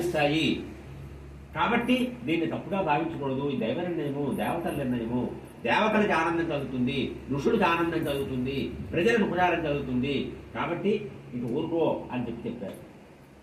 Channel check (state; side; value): identical; both; correlation 1.00